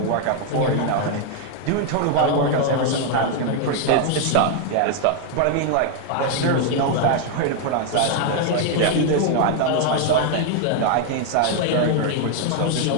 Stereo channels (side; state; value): both; different; correlation 0.00